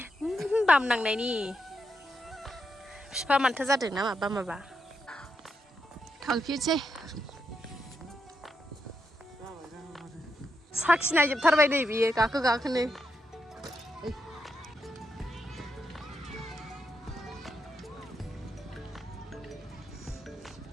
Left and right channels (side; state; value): both; normal; correlation 0.83